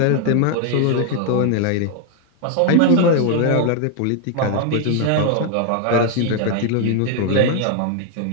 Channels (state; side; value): different; both; correlation 0.00